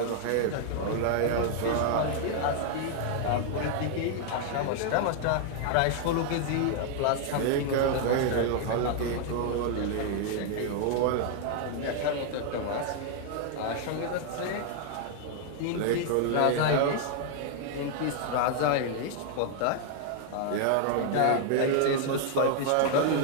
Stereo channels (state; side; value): different; both; correlation 0.00